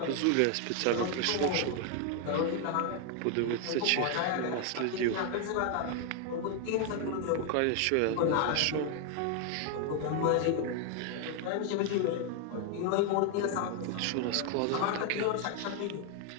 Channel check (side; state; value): both; different; correlation 0.01